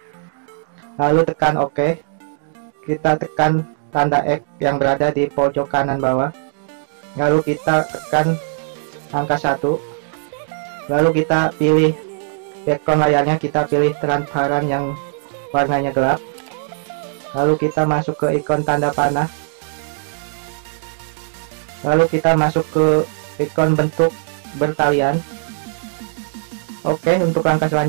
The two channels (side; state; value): left; silent; digital silence